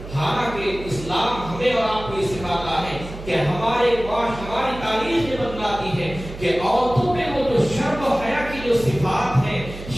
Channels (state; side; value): noise; right; hum, 12 dB below the sound